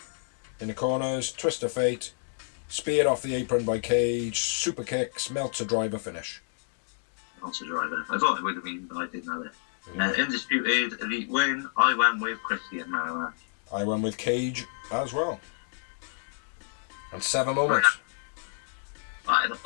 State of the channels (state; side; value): silent; right; digital silence